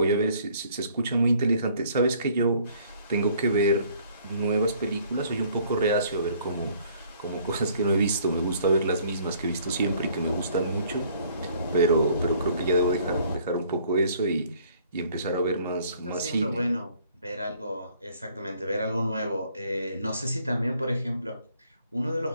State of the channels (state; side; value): inverted; both; correlation -0.59